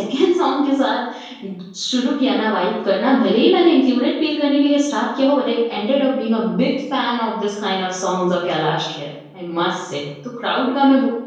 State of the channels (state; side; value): identical; both; correlation 1.00